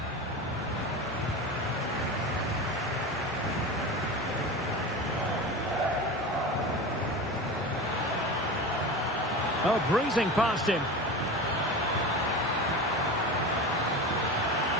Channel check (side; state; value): both; normal; correlation 0.28